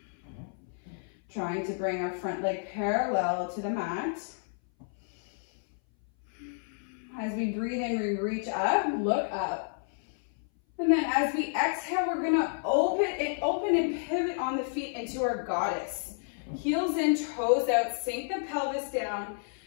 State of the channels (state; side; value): silent; right; 58 dB below the other